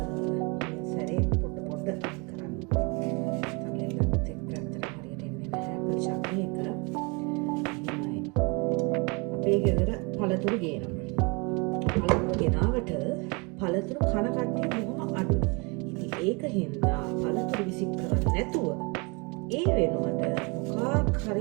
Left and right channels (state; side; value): quieter; left; 30.3 dB